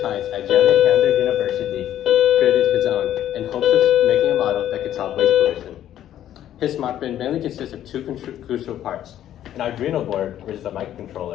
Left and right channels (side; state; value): right; quieter; 11.6 dB